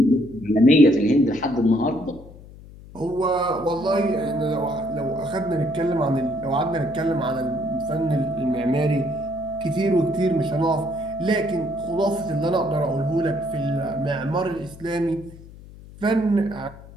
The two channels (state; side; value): noise; left; hum, 19 dB below the sound